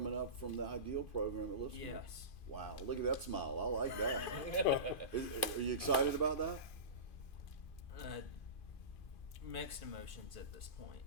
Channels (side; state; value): right; late; 2.4 ms